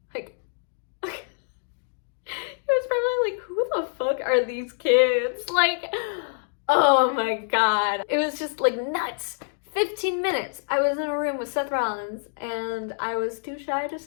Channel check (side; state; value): right; silent; digital silence